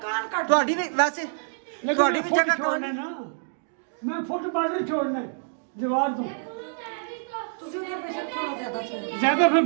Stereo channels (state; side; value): silent; left; digital silence